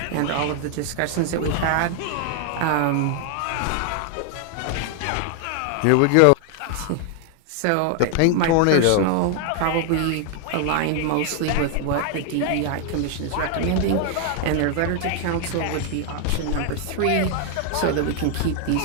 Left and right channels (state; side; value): different; both; correlation 0.00